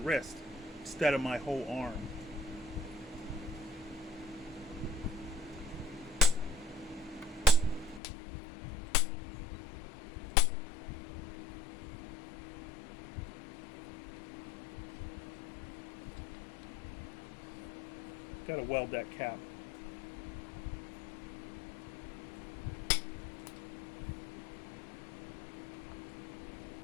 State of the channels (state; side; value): drops out; right; at 8.0 s